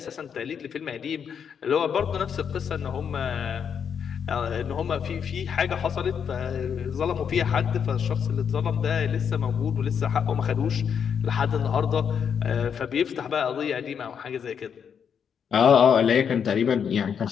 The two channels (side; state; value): right; quieter; 7.4 dB